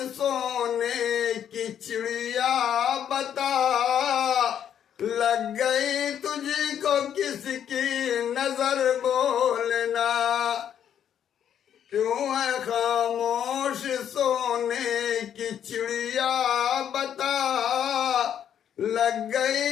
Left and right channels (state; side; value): quieter; right; 9.3 dB